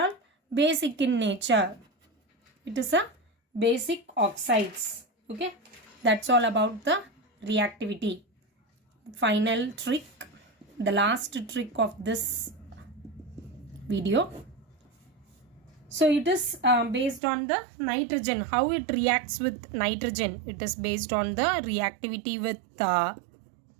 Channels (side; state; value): left; drops out; at 17.2 s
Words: all basic in nature. It is a basic oxides. Okay, that's all about the reactivity. Final trick, the last trick of this video. So it is based on the nitrogen, how it reacts with nitrogen. It is based on the reactivity with